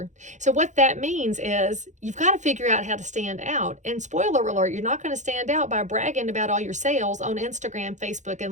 So what that means is you've got to figure out how to stand out. And spoiler alert, you're not going to stand out by bragging about all your sales on Instagram, Facebook,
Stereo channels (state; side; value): late; left; 0.35 ms